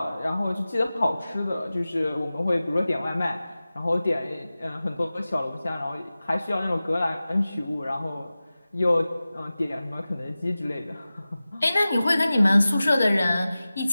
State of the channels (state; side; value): inverted; both; correlation -0.96